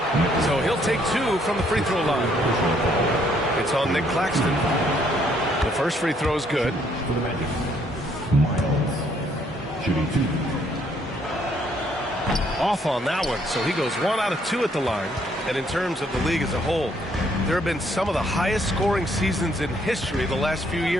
So he'll take 2 from the free throw line. It's on Nick Claxton. The first free throw is good. For the Magic, Miles shooting 2. Off on that one, so he goes 1 out of 2 at the line. And in terms of the league as a whole, there have been some of the highest scoring seasons in history the last few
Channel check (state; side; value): normal; both; correlation 0.68